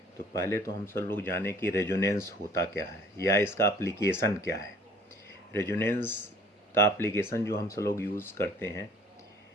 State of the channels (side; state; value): both; normal; correlation 0.53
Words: तो पहले तो हम सब लोग जाने कि रेजोनेंस होता क्या है या इसका एप्लीकेशन क्या है। रेजोनेंस का एप्लीकेशन जो हम सब लोग यूज़ करते हैं,